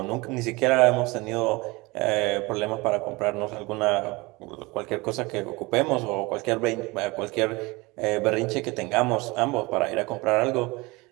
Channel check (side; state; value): left; quieter; 23.8 dB